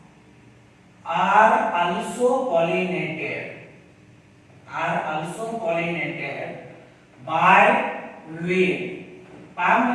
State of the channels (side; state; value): both; identical; correlation 1.00